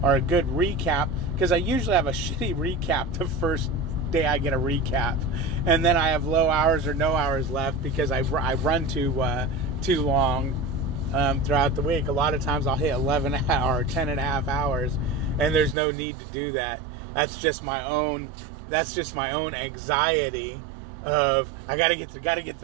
or a good recap, because I usually have a shitty recap the first day I get a recap, and then I have low hours or no hours left because I run too long throughout the week. A lot of times I'll hit 11 or 10 and a half hours, and there's no need to do that. That's just my own anxiety of I gotta get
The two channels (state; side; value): drops out; left; at 15.8 s